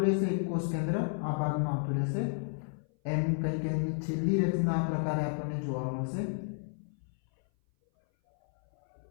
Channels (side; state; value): right; silent; 57 dB below the other